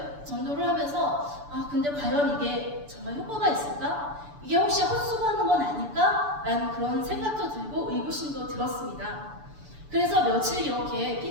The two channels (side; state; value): left; late; 6.9 ms